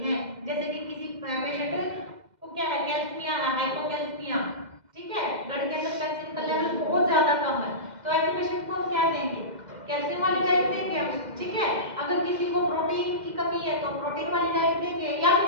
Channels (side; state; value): left; late; 2.1 ms